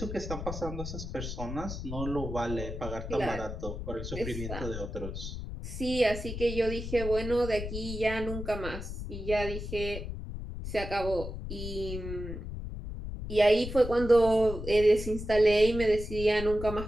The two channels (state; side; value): noise; left; rumble, 7 dB below the sound